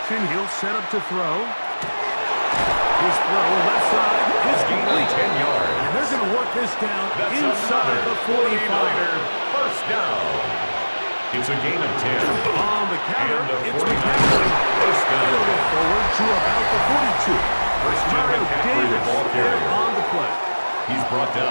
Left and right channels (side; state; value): both; inverted; correlation -1.00